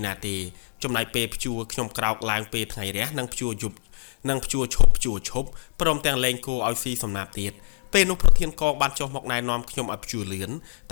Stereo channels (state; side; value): silent; right; digital silence